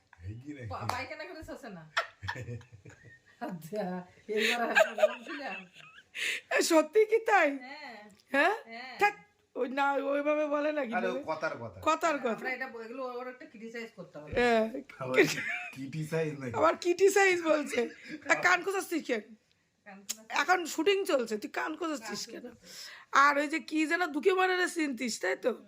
পায়খানা করে শোষে না। আচ্ছা, এইবার বলছিলাম। সত্যি কি তাই? হ্যাঁ হ্যাঁ হ্যাঁ। থাক, ওই না ওইভাবে বলে নাকি কথার কথা। কথার কথা। আমরা এটা এগুলো ওর একটা ক্রিটিসাইজ করতে হবে। হ্যাঁ, ক্রিটিসাইজ নাকি? আবার ক্রিটিসাইজ বলছে। কান খোঁচাচ্ছিস কেন? এখন শুটিং চলছে, তুই কান খোঁচাচ্ছিস কেন? আর ওই যে কি যেন দুকে মারারে চিনতিস তাই তো?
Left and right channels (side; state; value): both; identical; correlation 1.00